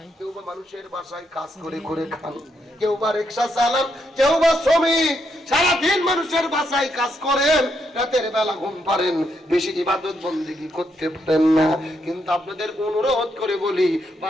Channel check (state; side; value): normal; both; correlation 0.79